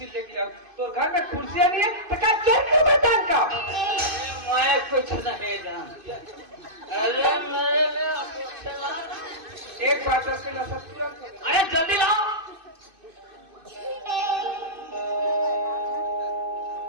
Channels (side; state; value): left; late; 2.5 ms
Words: लेके आओ तो घर में कुर्सियां नहीं है तो क्या चोर क्यों बतान का मैं कुछ नहीं जानती। अरे मेरे लिए अपेक्षा एक बात है उसके नशा तुरंत हो गया। अरे जल्दी लाओ